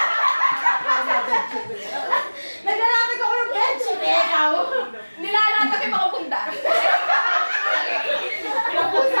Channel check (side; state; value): both; inverted; correlation -1.00